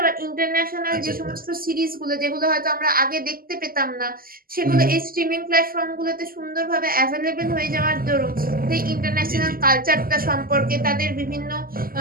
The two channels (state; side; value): late; left; 0.42 ms